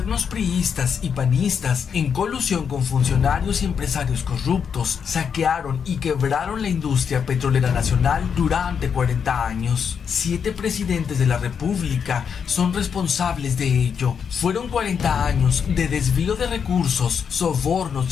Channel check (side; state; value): right; quieter; 6.9 dB